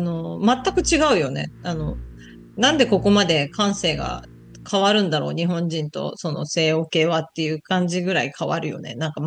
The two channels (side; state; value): both; identical; correlation 1.00